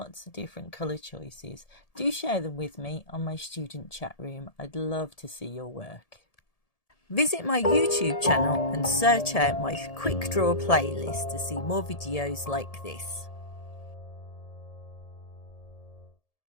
of different colour choices. Do share them with me on my student chat room. I'd love to see your work. Visit my YouTube channel and search out my quick draw playlist to see more videos like this.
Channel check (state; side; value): late; right; 1.7 ms